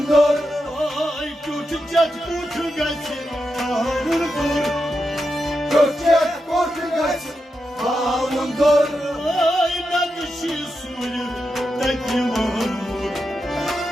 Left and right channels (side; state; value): both; normal; correlation 0.87